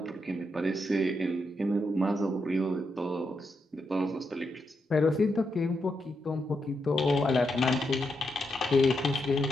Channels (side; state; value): both; normal; correlation 0.83